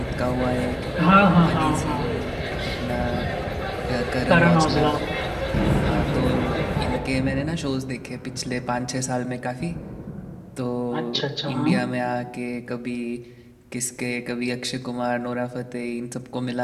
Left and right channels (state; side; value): identical; both; correlation 1.00